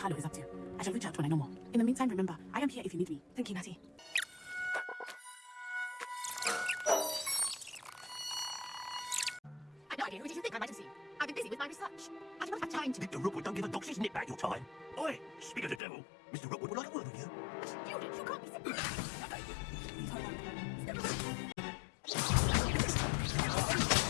is up to. I shall reach out when I know more. In the meantime, remember, I am here if you need me. Thank you, Natty. I've no idea who did you think I might have seen. I've been busy with my research. I do not have time to... Mr. Rookwood don't give a doxy's nip back your time. Oi, speak of the devil. Mr. Rookwood would like a word with you. Student, you can't be simple.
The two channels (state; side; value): drops out; right; at 15.8 s